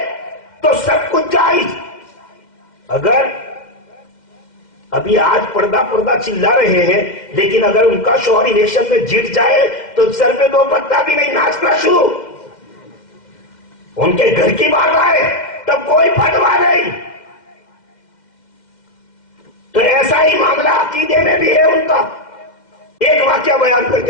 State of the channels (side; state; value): right; late; 2.1 ms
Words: تو سب کچھ جائز۔ اگر ابھی آج پردہ چلا رہے ہیں، لیکن اگر ان کا شوہر الیکشن میں جیت جائے تو سر پہ دو پتا بھی نہیں، ناچنا شروع۔ ان کے گھر کی بات آئے تب کوئی فتوا نہیں۔ تو ایسا ہی معاملہ عقیدے میں بھی ہے ان کا۔ ایک واقعہ بیان کر